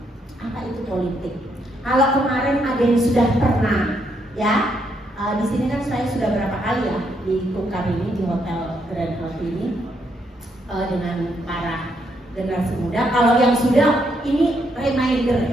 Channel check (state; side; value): normal; both; correlation 0.76